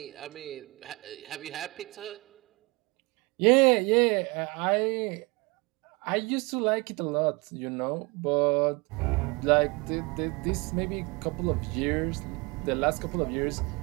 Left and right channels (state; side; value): quieter; left; 26.5 dB